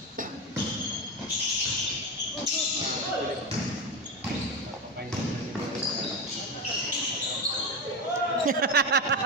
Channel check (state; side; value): normal; both; correlation 0.17